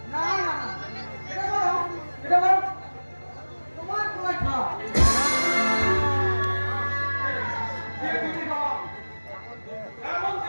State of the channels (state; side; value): inverted; both; correlation -1.00